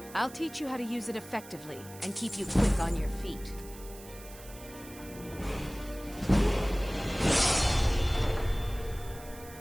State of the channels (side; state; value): right; noise; hiss, 18 dB below the sound